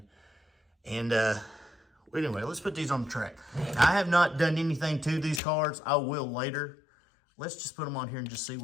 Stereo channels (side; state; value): right; drops out; at 5.4 s